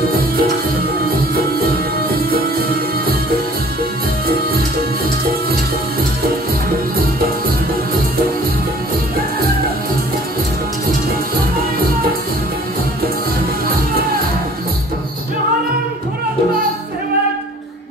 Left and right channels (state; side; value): normal; both; correlation 0.52